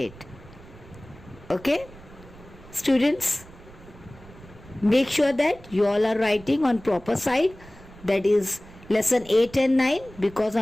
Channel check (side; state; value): right; noise; rumble, 20 dB below the sound